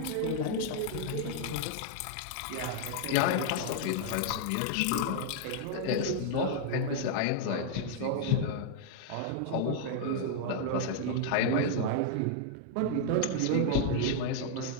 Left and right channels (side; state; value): both; different; correlation -0.01